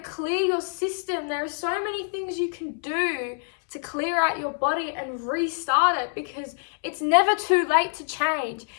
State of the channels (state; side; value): silent; right; 61 dB below the other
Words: clear your system. There are so many things you can do to clear out your body and restart it, because it's never too late to change.